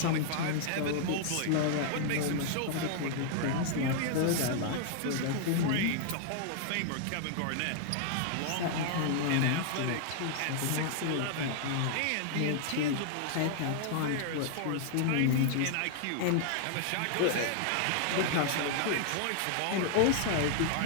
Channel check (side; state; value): both; different; correlation 0.00